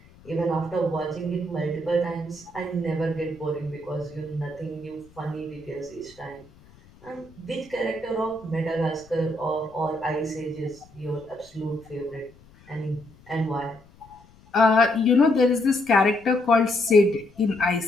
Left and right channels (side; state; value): left; noise; rumble, 26 dB below the sound